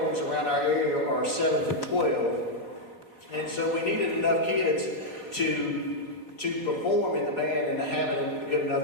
around our area are 7 to 12. And so we needed enough kids to perform in the band and to have it good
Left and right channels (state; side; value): late; right; 4.4 ms